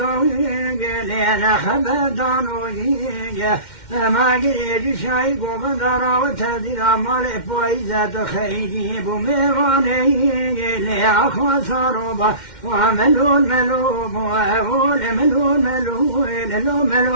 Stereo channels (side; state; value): right; late; 2.1 ms